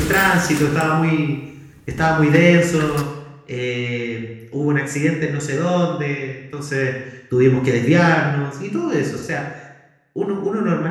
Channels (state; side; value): identical; both; correlation 1.00